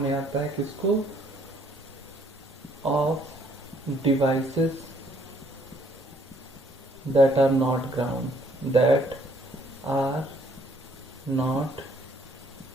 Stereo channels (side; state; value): both; normal; correlation 0.64